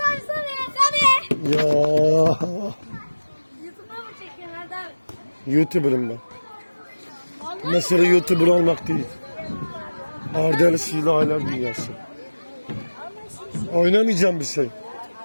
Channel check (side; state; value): both; inverted; correlation -1.00